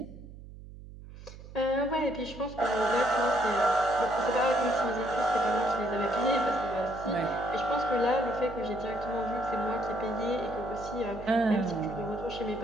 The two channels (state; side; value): noise; right; hum, 16 dB below the sound